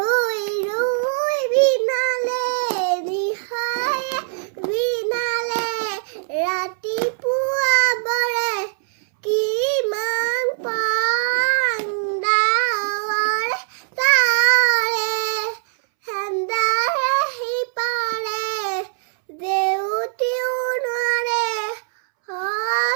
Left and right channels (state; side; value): silent; left; 65 dB below the other